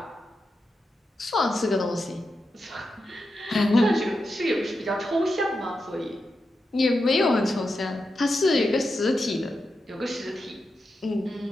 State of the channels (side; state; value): both; normal; correlation 0.88